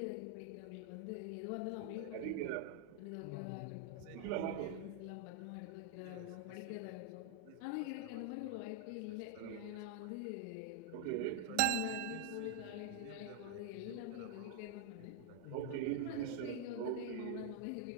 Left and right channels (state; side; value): different; both; correlation 0.00